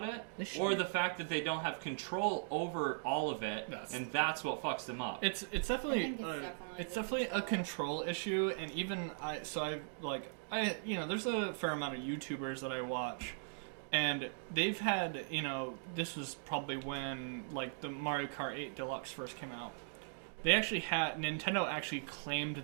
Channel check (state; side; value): silent; left; digital silence